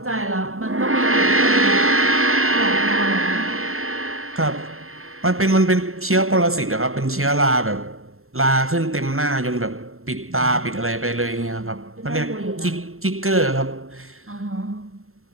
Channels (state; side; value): late; left; 0.62 ms